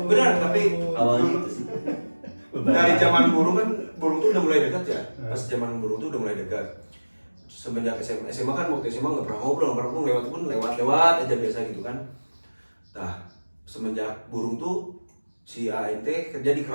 Benar, tapi Awalnya itu sih. dari zaman burung kan, burung tuh udah mulai dekat ya. Pas zaman burung tuh udah mulai dekat. Semenjak SMA kan, waktu SMA nggak pernah ngobrol, lewat pun lewat aja biasa gitu kan. Nah, semenjak burung tuh si ANT kerja di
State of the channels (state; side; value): inverted; both; correlation -1.00